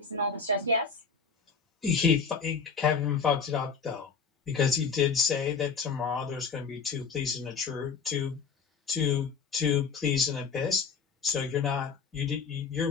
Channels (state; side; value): quieter; right; 5.7 dB